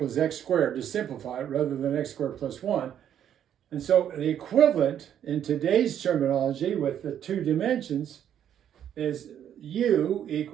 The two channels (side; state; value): left; quieter; 9.8 dB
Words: x squared to simplify it rather than x squared plus 1. And so the equivalent in today's terminology with the two dimensions is u